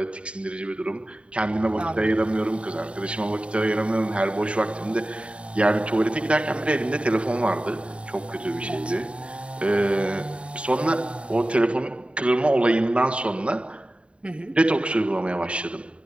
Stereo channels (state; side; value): late; left; 0.059 ms